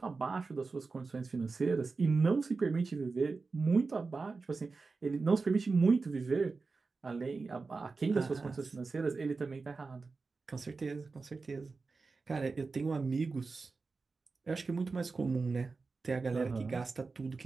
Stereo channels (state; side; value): quieter; left; 4.2 dB